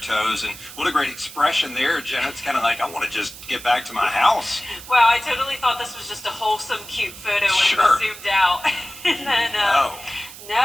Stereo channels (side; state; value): right; noise; hiss, 15 dB below the sound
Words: And what a great expression there, Jenna. It's kind of like, I want to just get back to my house. Wow, I totally thought this was just a wholesome, cute photo when it was zoomed out. And then,